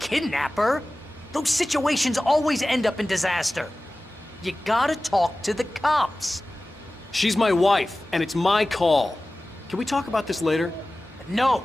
Those situations always end up in disaster. You gotta talk to the cops. She's my wife, and it's my call. Can we talk about this later? No.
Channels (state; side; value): normal; both; correlation 0.97